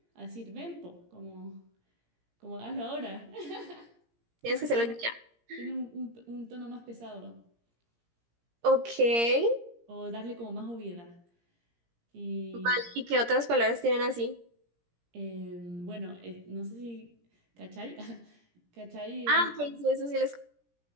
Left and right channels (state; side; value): late; left; 17 ms